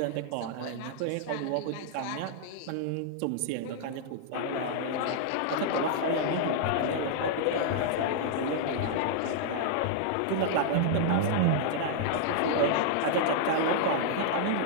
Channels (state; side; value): different; both; correlation -0.01